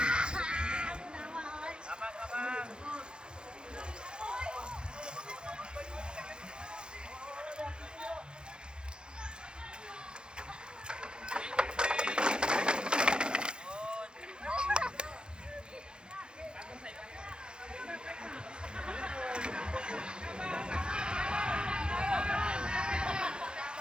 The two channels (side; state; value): left; late; 0.049 ms